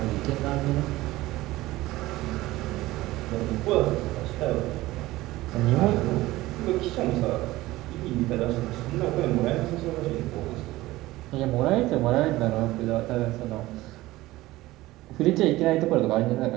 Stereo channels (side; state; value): left; quieter; 17.8 dB